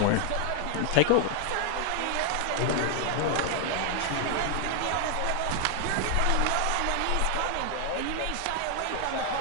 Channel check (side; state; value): both; different; correlation 0.00